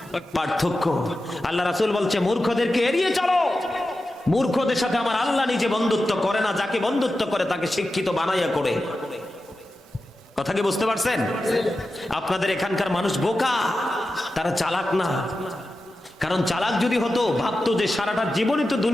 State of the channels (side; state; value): both; normal; correlation 0.92